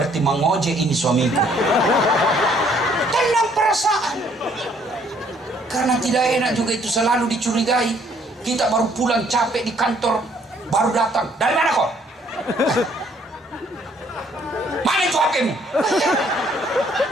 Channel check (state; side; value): normal; both; correlation 0.64